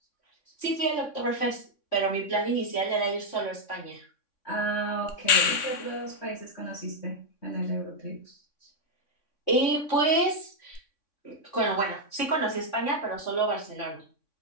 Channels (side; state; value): right; late; 3.6 ms